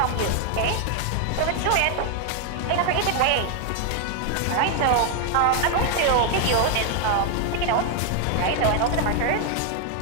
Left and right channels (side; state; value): both; different; correlation 0.01